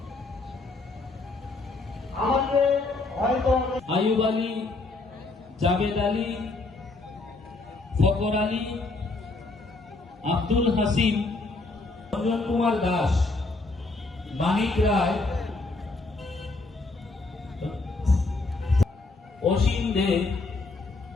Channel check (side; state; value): right; quieter; 3.4 dB